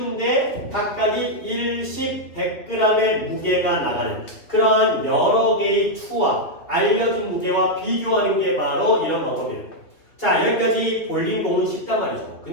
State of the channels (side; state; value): right; late; 3.1 ms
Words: 각각이 1십 100g의 무게가 나가는 그러한 여러 개의 추와 알려진 무게와 비교하는 게 바로 이런 방법이에요. 자, 여기까지 볼링공은 쉽단 말이죠.